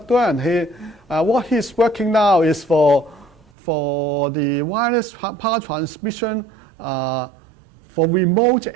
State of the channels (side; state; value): left; drops out; at 3.4 s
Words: What he's working now is for the wireless power transmission for remote